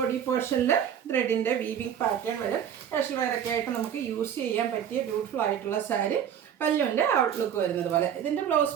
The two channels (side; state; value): left; quieter; 9.0 dB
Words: പോർഷനിൽ ത്രെഡിൻ്റെ വീവിങ് പാറ്റേൺ വരും. കാഷ്വൽ വെയറൊക്കെ ആയിട്ട് നമുക്ക് യൂസ് ചെയ്യാൻ പറ്റിയ ബ്യൂട്ടിഫുൾ ആയിട്ടുള്ള സാരി. പല്ലുവിൻ്റെ ഔട്ട്ലുക്ക് വരുന്നത് പോലെ. ഇതിൻ്റെ